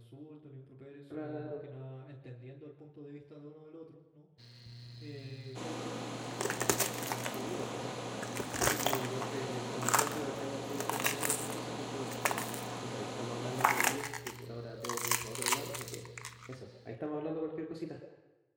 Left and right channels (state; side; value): identical; both; correlation 1.00